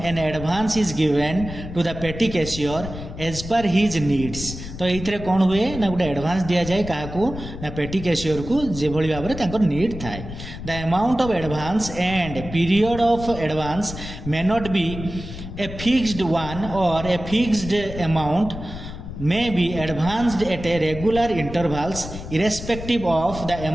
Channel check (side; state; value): left; noise; rumble, 10 dB below the sound